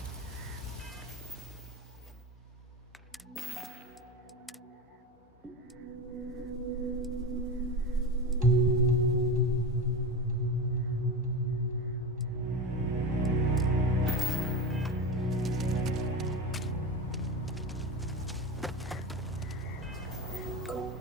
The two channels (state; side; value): normal; both; correlation 0.22